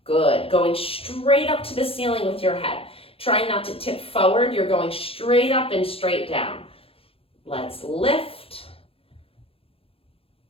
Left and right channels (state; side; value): late; right; 0.27 ms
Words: Good. Going straight up to the ceiling with your head. Try not to tip forward. You're going straight up and straight down. Let's lift.